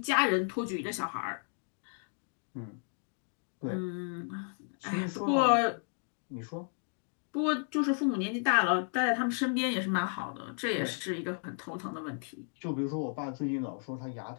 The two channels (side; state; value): right; silent; 55 dB below the other